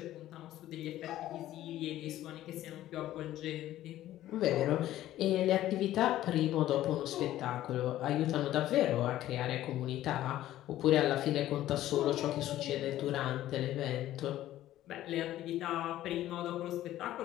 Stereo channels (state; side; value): quieter; right; 13.8 dB